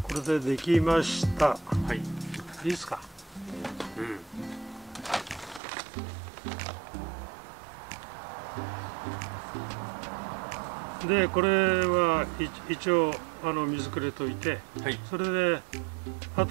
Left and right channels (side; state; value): left; drops out; at 5.6 s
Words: これでできました。はい。いいですか。うん。でこれは一応水くれといて、はい、それで